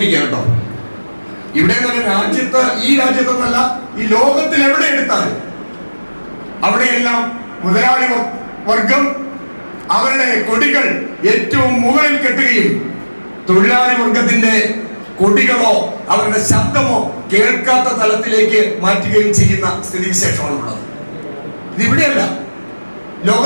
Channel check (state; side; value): inverted; both; correlation -1.00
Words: കേട്ടോ. ഇവിടെ നല്ല രാജ്യത്ത്, ഈ രാജ്യത്തൊന്നല്ല, ഈ ലോകത്തിൽ എവിടെ എടുത്താലും അവിടെയെല്ലാം മുതലാളി വർഗം അവരുടെ കൊടികൾ ഏറ്റവും മുകളിൽ കെട്ടുകയും തൊഴിലാളി വർഗത്തിന്റെ കൊടികളോ അവരുടെ ശബ്ദമോ കേൾക്കാത്ത തലത്തിലേക്ക് മാറ്റുകയും ചെയ്യുന്ന സ്ഥിതിവിശേഷമാണുള്ളത്. ഇതിവിടെയല്ല,